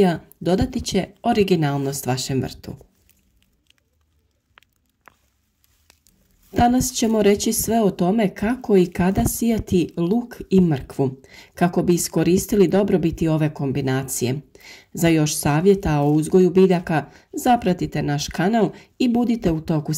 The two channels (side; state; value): both; identical; correlation 1.00